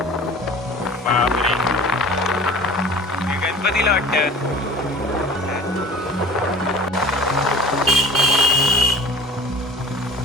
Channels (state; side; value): normal; both; correlation 0.42